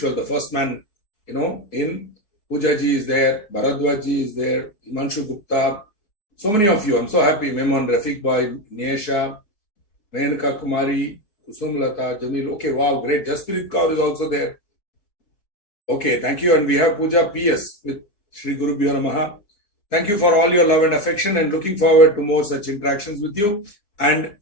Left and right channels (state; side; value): late; right; 4.9 ms